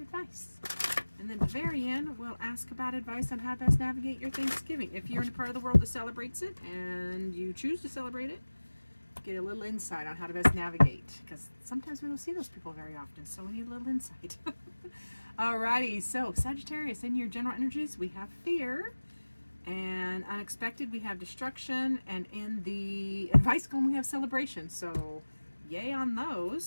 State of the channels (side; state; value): both; inverted; correlation -1.00